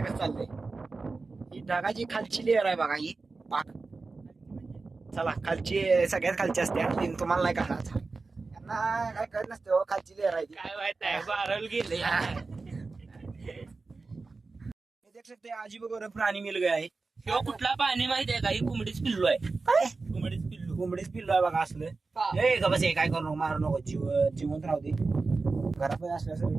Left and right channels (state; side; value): quieter; left; 3.9 dB